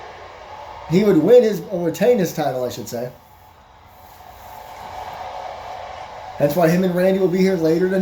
He would retain his title, I should say. That's why him and Randy will be here later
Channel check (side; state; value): both; identical; correlation 1.00